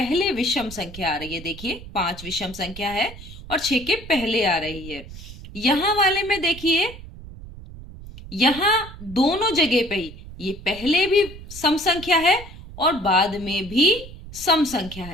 विषम संख्या आ रही है। देखिए पांच विषम संख्या है और छह के पहले आ रही है। यहां वाले में देखिए, यहां दोनों जगह पे ही ये पहले भी सम संख्या है और बाद में भी सम संख्या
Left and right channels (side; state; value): right; noise; rumble, 15 dB below the sound